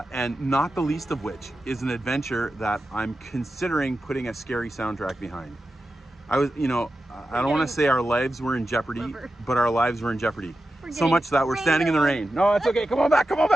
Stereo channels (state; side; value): normal; both; correlation 0.91